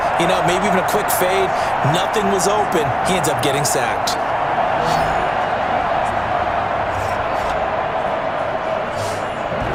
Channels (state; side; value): identical; both; correlation 1.00